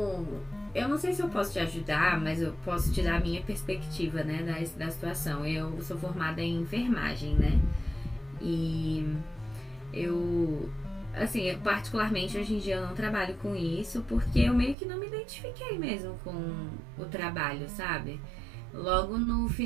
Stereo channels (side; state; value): left; drops out; at 14.8 s